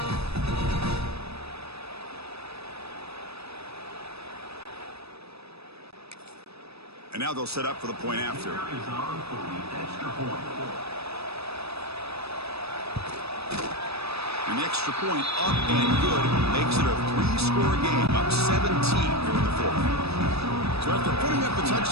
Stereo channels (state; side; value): late; left; 0.78 ms